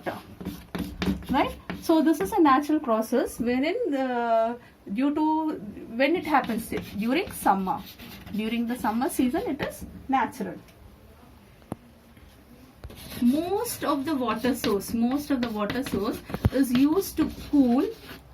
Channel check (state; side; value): identical; both; correlation 1.00